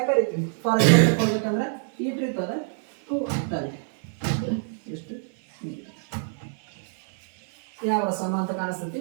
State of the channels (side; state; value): left; silent; 57 dB below the other